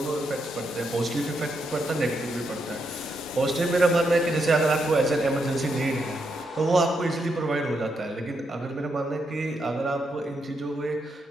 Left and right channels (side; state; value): both; normal; correlation 0.81